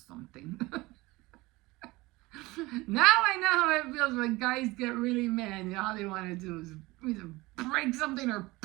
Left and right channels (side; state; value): left; quieter; 21.3 dB